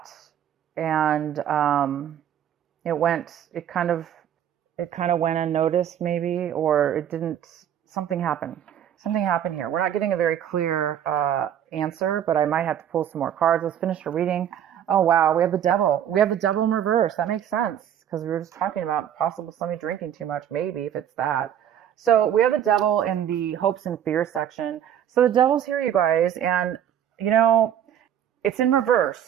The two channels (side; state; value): left; quieter; 9.9 dB